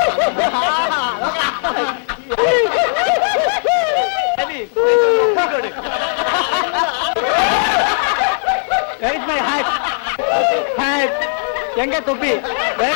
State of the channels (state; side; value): silent; right; digital silence